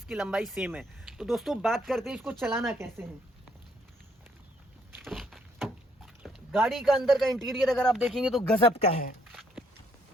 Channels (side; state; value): both; normal; correlation 0.70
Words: लंबाई सेम है। तो दोस्तों, बात करते हैं इसको चलाना कैसे है। गाड़ी का अंदर का इंटीरियर अगर आप देखेंगे तो गजब का है।